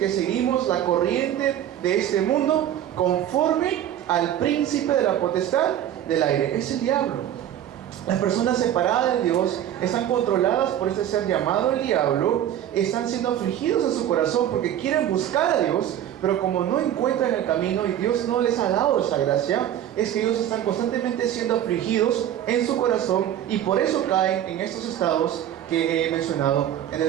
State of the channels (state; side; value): quieter; left; 11.1 dB